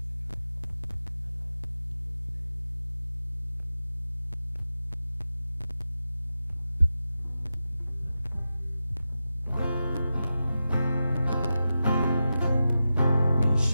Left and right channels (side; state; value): both; inverted; correlation -0.91